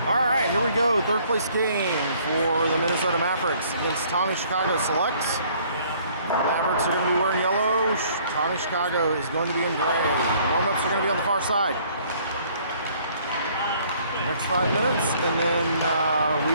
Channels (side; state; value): both; inverted; correlation -0.59